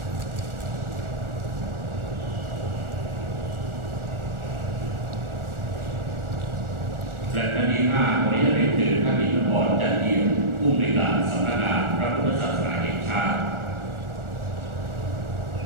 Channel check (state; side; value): late; left; 1.4 ms